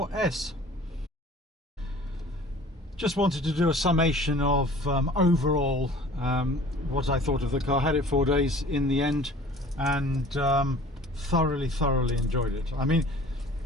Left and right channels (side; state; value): both; normal; correlation 0.47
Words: Just wanted to do a summation of overall what I thought of the car. Had it 4 days in the end and thoroughly enjoyed it. I mean,